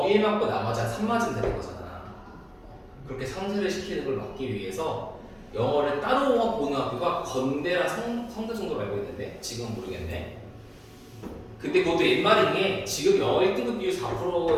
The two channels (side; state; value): both; identical; correlation 1.00